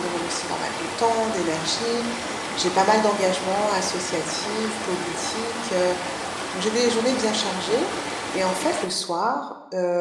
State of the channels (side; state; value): both; identical; correlation 1.00